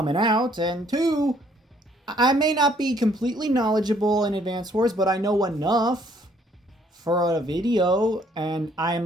out. And two, I may not be completely knowledgeable in Advance Wars, but I know enough for a video, and I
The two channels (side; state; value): both; normal; correlation 0.64